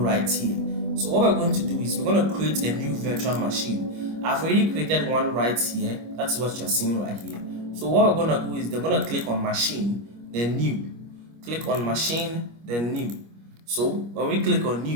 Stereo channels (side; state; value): left; late; 25 ms